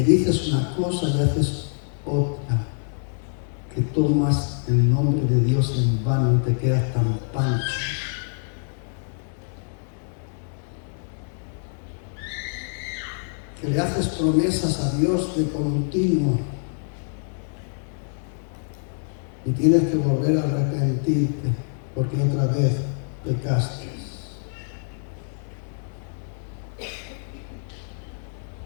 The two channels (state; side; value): silent; right; digital silence